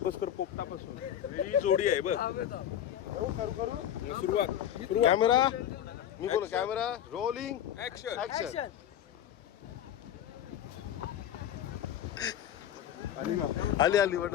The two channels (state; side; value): quieter; right; 10.5 dB